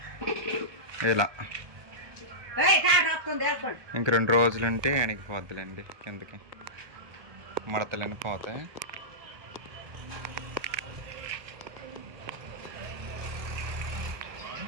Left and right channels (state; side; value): late; left; 1.2 ms